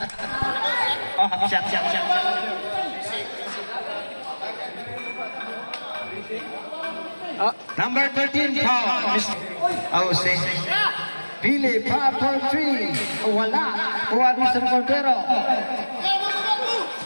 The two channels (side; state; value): both; inverted; correlation -1.00